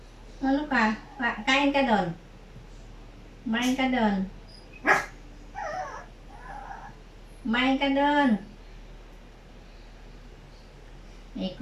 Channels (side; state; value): both; identical; correlation 1.00